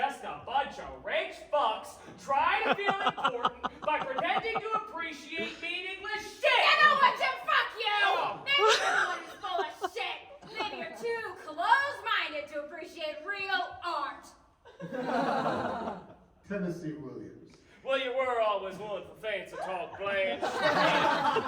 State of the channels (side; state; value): both; identical; correlation 1.00